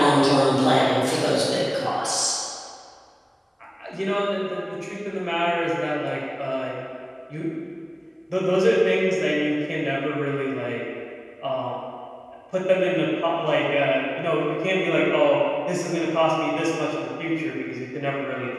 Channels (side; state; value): both; identical; correlation 1.00